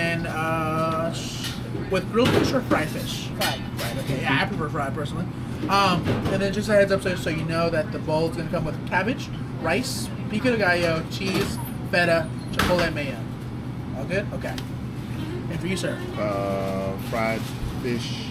with grilled fish or fried fish? Fried. Right. Okay. Yeah, I prefer fried personally. And then just a heads up, so you know that the bowl is gonna come with cabbage, rice, pico de gallo, cheese, feta, chipotle mayo. All good? Okay. And for you, sir? Fried fish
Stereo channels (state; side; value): identical; both; correlation 1.00